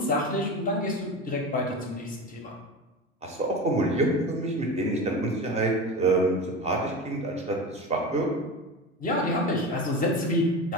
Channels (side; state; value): both; normal; correlation 0.26